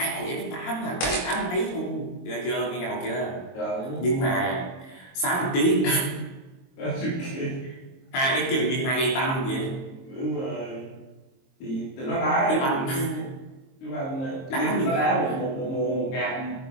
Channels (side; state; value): right; late; 22 ms